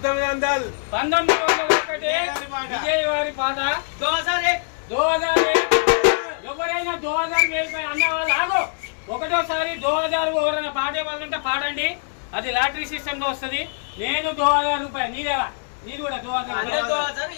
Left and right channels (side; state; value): right; silent; digital silence